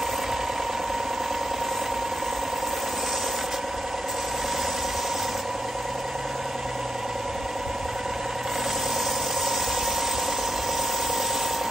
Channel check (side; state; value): both; normal; correlation 0.81